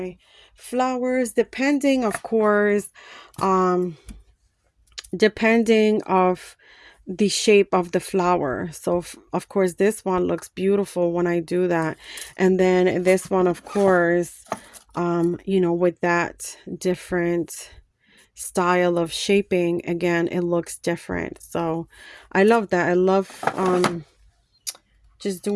flowers, depending, of course, depending of the shape of the flower. So of course this one looks beautiful when I do that, and then this one, of course, you know, with that different style of shaping, again, it looks different. So I love that. I love just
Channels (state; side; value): identical; both; correlation 1.00